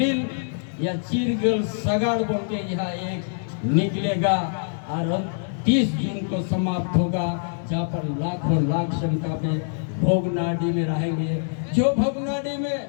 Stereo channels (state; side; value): silent; right; 62 dB below the other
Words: या चीरगल सगाड़ बोल के यहाँ एक निकलेगा और 30 जून को समाप्त होगा, जहाँ पर लाखों लाख संख्या में भोगनाडी में रहेंगे। जो भोगनाडी में